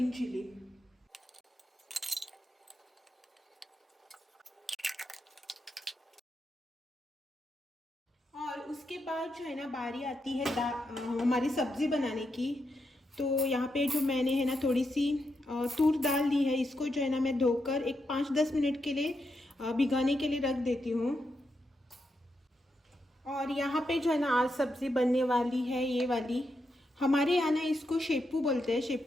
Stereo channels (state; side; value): normal; both; correlation 0.84